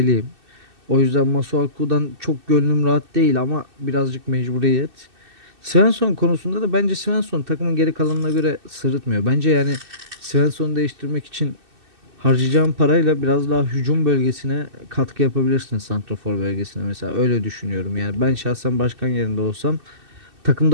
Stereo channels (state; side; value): late; left; 2.6 ms